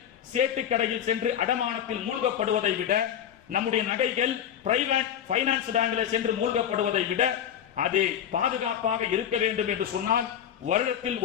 சேட்டு கடையில் சென்று அடமானத்தில் மூழ்கப்படுவதை விட, நம்முடைய நகைகள் பிரைவேட் பைனான்ஸ் பேங்க்ல சென்று மூழ்கப்படுவதை விட அது பாதுகாப்பாக இருக்க வேண்டும் என்று சொன்னால் வருடத்தில்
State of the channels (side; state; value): right; quieter; 9.6 dB